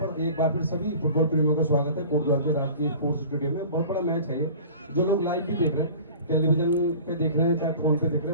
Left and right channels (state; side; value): inverted; both; correlation -0.42